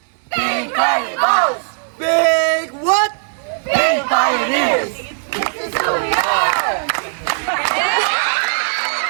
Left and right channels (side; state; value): left; silent; digital silence